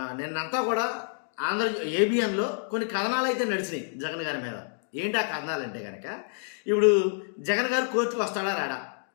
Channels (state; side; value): silent; right; digital silence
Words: నిన్నంతా కూడా ఆంధ్ర ఏబిఎన్లో కొన్ని కథనాలు అయితే నడిచినాయి జగన్ గారి మీద. ఏంటి ఆ కథనాలు అంటే కనుక, ఇప్పుడు జగన్ గారు కోర్టుకు వస్తాడా రాడా,